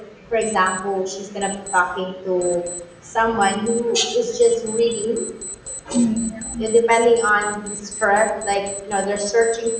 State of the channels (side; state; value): both; identical; correlation 1.00